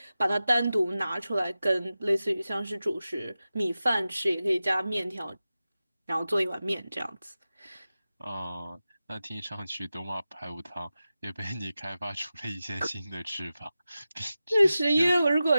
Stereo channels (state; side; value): inverted; both; correlation -0.94